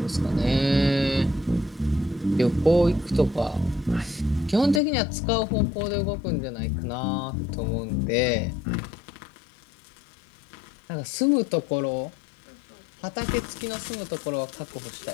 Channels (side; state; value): right; drops out; at 4.8 s